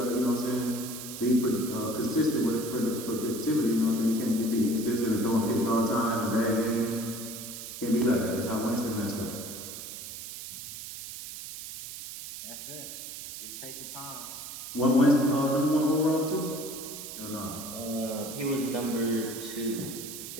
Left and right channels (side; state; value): right; noise; hiss, 10 dB below the sound